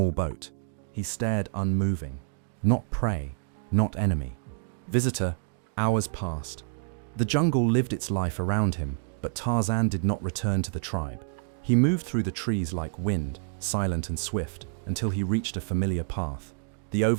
boat. He stared unmoving. Not prey, not enemy. Visitor, Hours passed. The jungle lived its life around him, but Tarzan did not return to the tribe. He moved through the trees like wind, silent and swift, until he reached a familiar path, the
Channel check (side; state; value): left; silent; digital silence